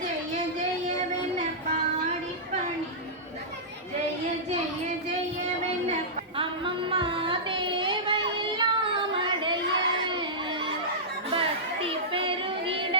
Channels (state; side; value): normal; both; correlation -0.14